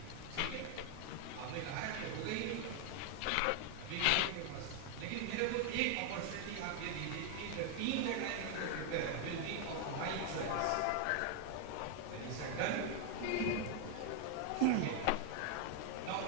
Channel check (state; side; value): different; both; correlation 0.00